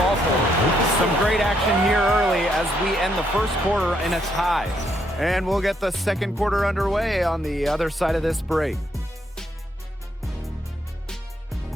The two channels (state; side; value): normal; both; correlation 0.74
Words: for her. Some great action here early as we end the first quarter in a tie. And we'll get the second quarter underway on the other side of this break.